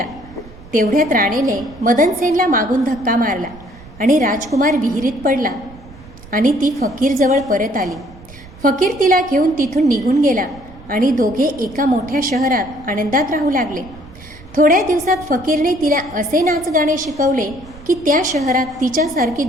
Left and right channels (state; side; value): noise; right; rumble, 20 dB below the sound